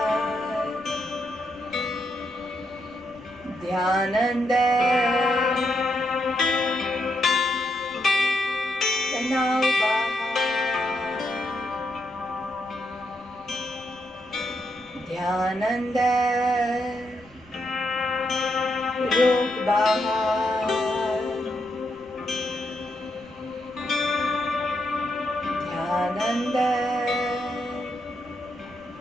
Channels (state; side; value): noise; left; rumble, 26 dB below the sound